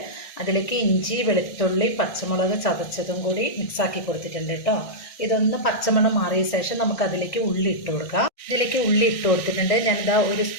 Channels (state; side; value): late; right; 1.6 ms